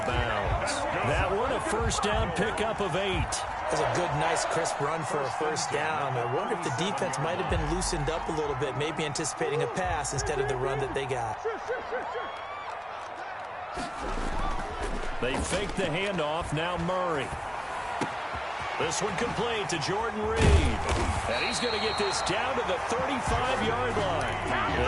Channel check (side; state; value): both; identical; correlation 1.00